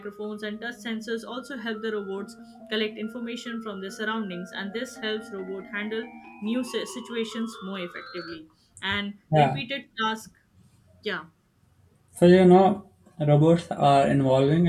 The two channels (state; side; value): identical; both; correlation 1.00